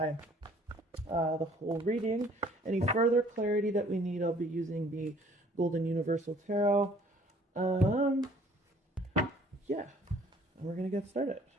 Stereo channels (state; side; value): normal; both; correlation 0.56